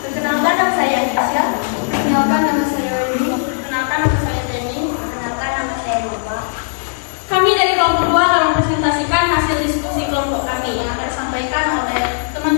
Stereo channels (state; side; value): silent; right; 68 dB below the other